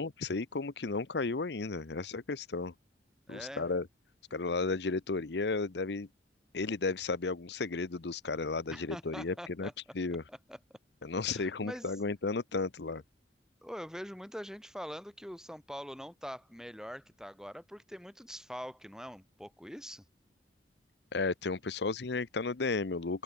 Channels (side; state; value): right; quieter; 3.2 dB